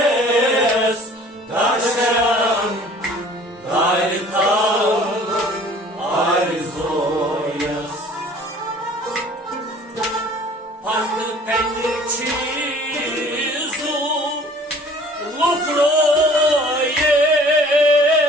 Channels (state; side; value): normal; both; correlation 0.50